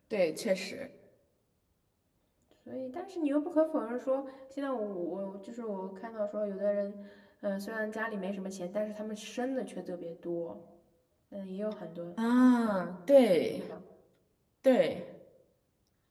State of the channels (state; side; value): identical; both; correlation 1.00